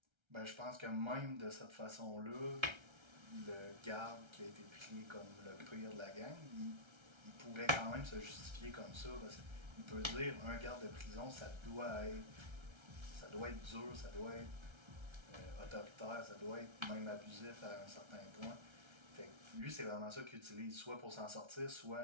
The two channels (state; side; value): late; left; 1.3 ms